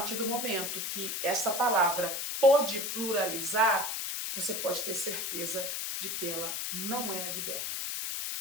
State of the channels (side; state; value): left; noise; hiss, 3 dB below the sound